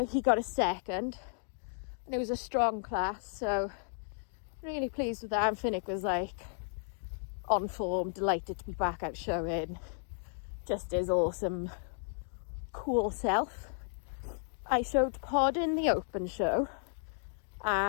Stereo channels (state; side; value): silent; right; digital silence